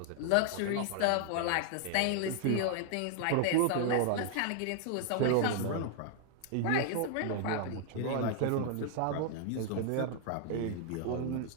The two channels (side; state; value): both; different; correlation 0.00